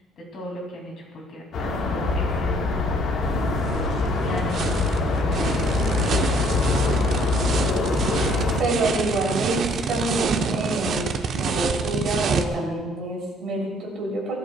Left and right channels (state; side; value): normal; both; correlation 0.61